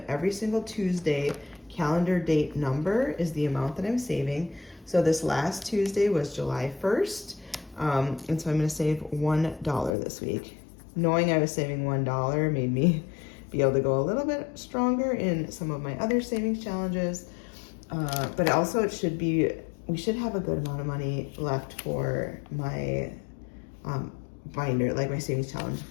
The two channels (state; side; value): drops out; right; at 10.0 s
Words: every single Tuesday calendar date number is the amount that I'm saving. So this last Tuesday was July 1st. And so I'm gonna save $1 this week. Knowing I was saving $1 made me be able to go a little bit stronger in some of my other savings challenges. But also we should have a good amount of money left for my binder, like my savings challenge